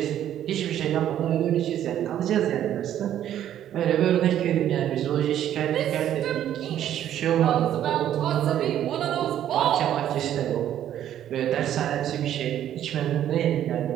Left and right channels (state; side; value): quieter; left; 11.1 dB